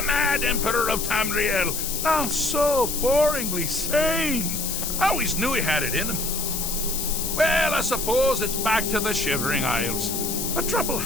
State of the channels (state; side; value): noise; left; hiss, 3 dB below the sound